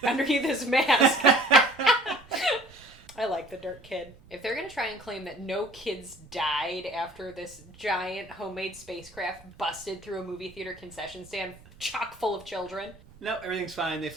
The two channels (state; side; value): noise; right; rumble, 24 dB below the sound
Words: underneath his mask. I like the dirt kid. If they're going to try and claim that no kids died after this giant homemade spacecraft busted through a movie theater concession stand chock full of children. No, everything's fine. They